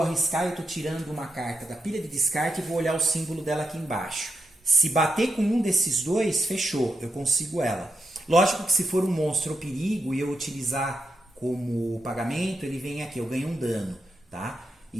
arriscar. Eu estou tirando uma carta da pilha de descarte e vou olhar o símbolo dela aqui embaixo. Se bater com um desses dois, fechou. Eu consigo ela. Lógico que se for um monstro ou perigo e eu utilizar como pagamento, ele vem aqui. Eu ganho um dano, tá?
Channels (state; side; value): normal; both; correlation 0.85